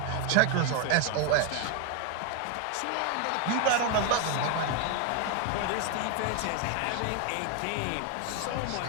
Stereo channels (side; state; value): both; different; correlation 0.01